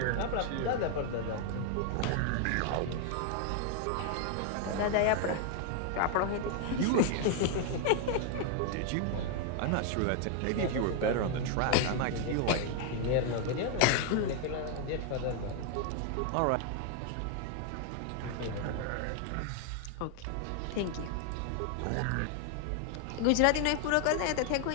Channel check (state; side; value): different; both; correlation 0.00